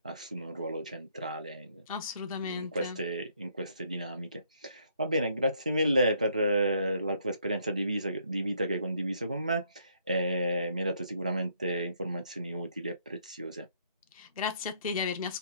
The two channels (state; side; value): inverted; both; correlation -0.68